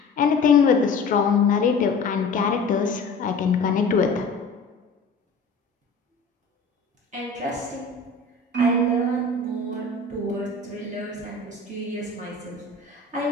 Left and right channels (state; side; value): quieter; right; 3.8 dB